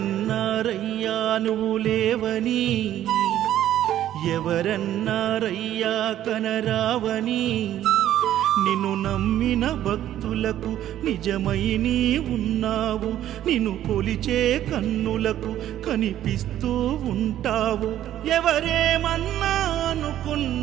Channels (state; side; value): quieter; left; 12.1 dB